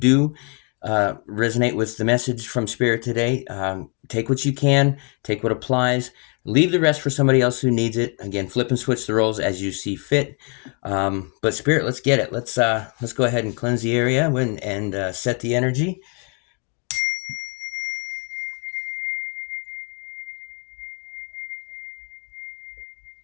resonate with the message from Spirit today, take what you can, take what applies. Leave the rest for somebody else who needs it. Again, flip and switch the roles as you see fit. But Spirit, let's get it. Let's go ahead and cleanse the area and set the energy.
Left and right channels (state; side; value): quieter; right; 37.0 dB